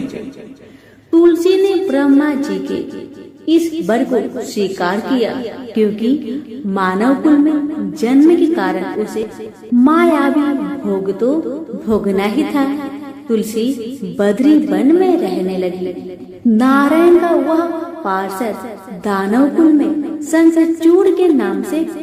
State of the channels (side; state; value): both; identical; correlation 1.00